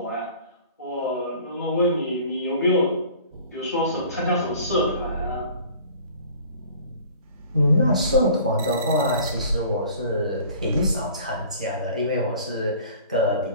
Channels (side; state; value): both; inverted; correlation -0.48